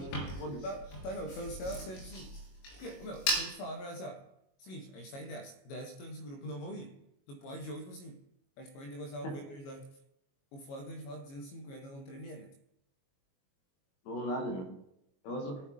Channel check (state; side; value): late; right; 22 ms